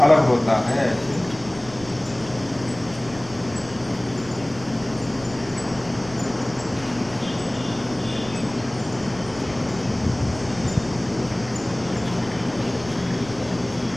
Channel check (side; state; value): right; noise; rumble, 18 dB below the sound